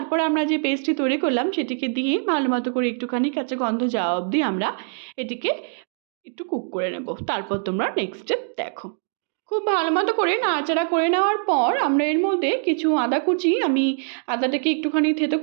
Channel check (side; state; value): left; silent; 63 dB below the other